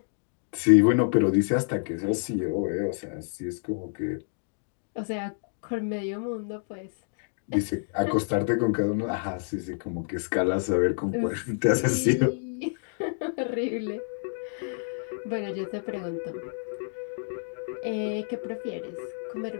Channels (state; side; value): silent; right; digital silence